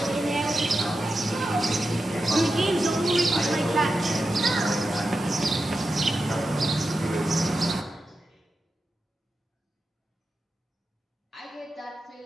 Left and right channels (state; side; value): normal; both; correlation 0.90